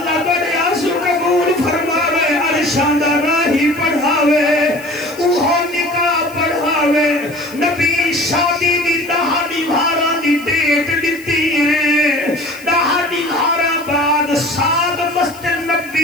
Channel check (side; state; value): left; noise; hiss, 21 dB below the sound